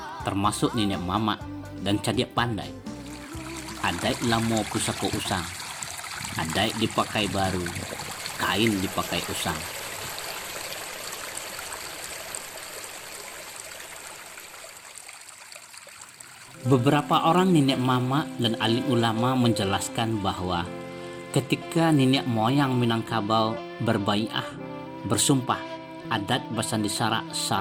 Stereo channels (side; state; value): both; identical; correlation 1.00